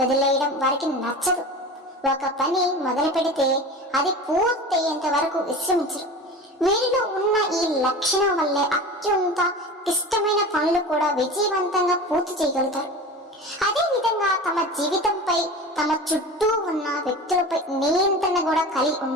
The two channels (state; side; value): normal; both; correlation 0.33